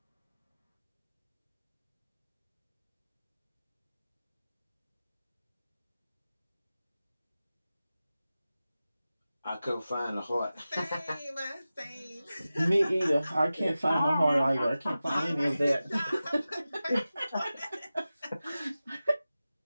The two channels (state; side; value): inverted; both; correlation -0.95